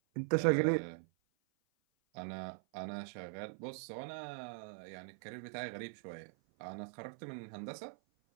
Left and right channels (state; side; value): silent; left; 50 dB below the other